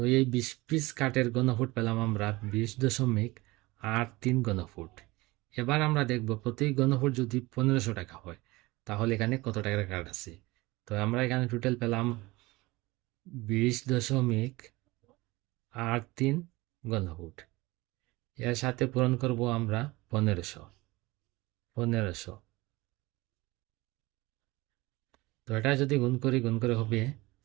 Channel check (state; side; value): quieter; left; 21.4 dB